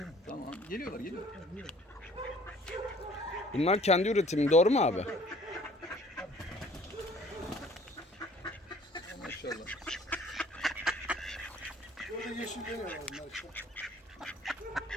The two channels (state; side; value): normal; both; correlation 0.54